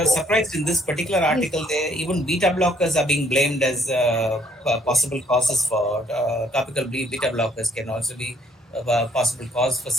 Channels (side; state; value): both; normal; correlation 0.65